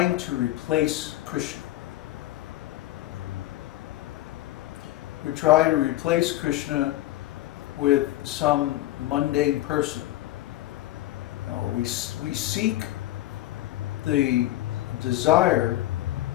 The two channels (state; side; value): quieter; right; 15.6 dB